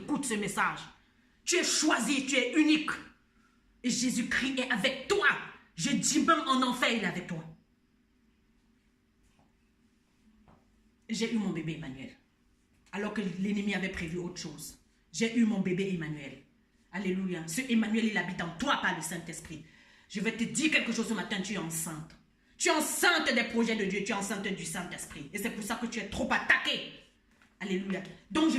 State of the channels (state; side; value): identical; both; correlation 1.00